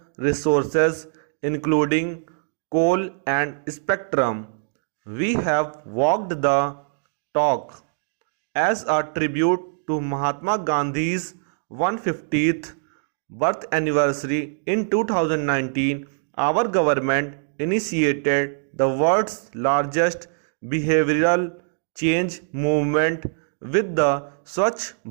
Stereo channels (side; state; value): left; silent; digital silence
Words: resources including coal and spectrum. We have walked the talk. As a tribute to Mahatma Gandhi's 150th birth anniversary in 2019, our government initiated the world's largest behavioral change movement with the Swachh